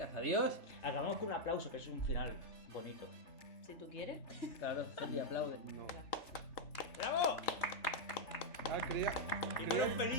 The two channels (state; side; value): late; right; 3.4 ms